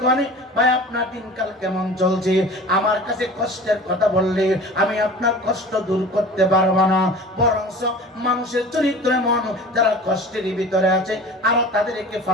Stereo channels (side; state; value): both; normal; correlation 0.40